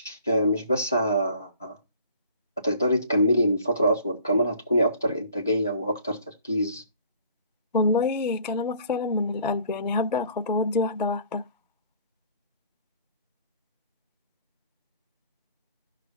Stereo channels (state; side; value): inverted; both; correlation -0.54